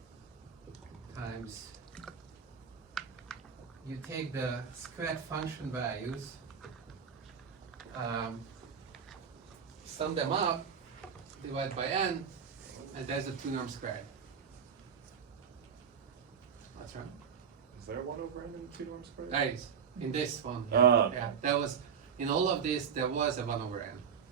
times, you take the squared function values, sum them up, divide by n, and there's a 2 norm squared. That's right. Is there 1 over n and 2 norm squared? There is. In this one. Ah. Yeah, there was, in all of this, there was a 1 over n.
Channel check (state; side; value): quieter; left; 7.0 dB